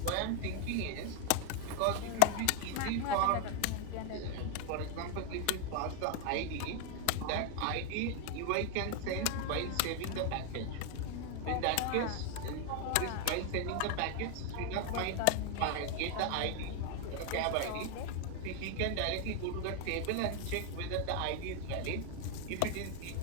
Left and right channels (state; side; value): different; both; correlation 0.01